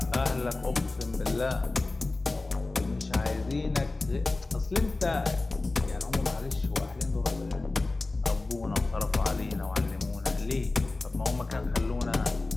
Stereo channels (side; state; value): right; quieter; 3.3 dB